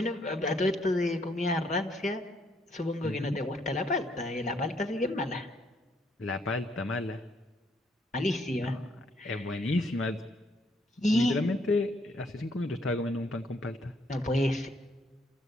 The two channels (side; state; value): both; normal; correlation 0.70